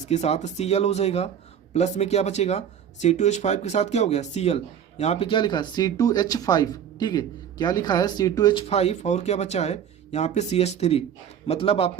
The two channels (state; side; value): quieter; left; 8.7 dB